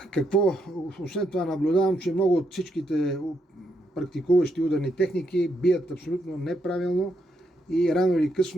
Какво? Освен това наблюдавам, че много от всичките практикуващи ударни техники бият абсолютно неправилно и рано или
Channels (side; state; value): both; normal; correlation 0.78